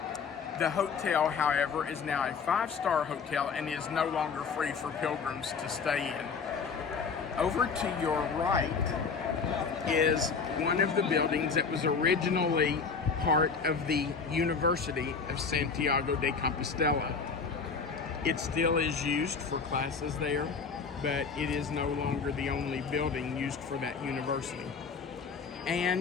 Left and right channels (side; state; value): right; quieter; 5.4 dB